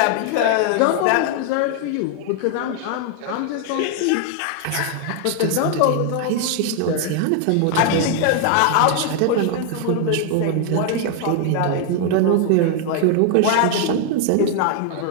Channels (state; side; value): different; both; correlation 0.00